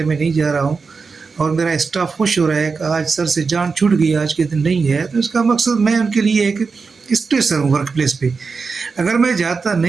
मैं नहीं जा रहा हूँ और मेरा स्टाफ खुश हो रहा है कि आज सर से जान छूट गई, आज के दिन नहीं है, तो इसका मकसद मैं उनके लिए एक स्ट्रेसर हूँ वर्क प्लेस पे। अगर मैं जाता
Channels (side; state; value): left; quieter; 4.8 dB